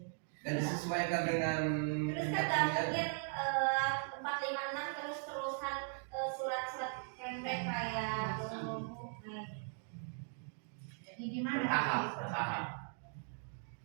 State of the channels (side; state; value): left; silent; 52 dB below the other